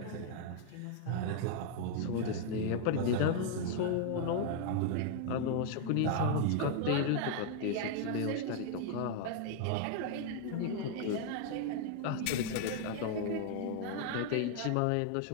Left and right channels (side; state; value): both; different; correlation 0.00